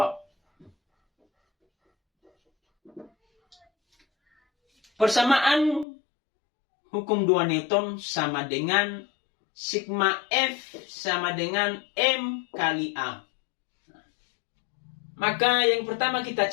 Persamaan hukum 2 Newton sama dengan sigma F sama dengan M kali A. Maka yang pertama kita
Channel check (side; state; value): right; drops out; at 5.9 s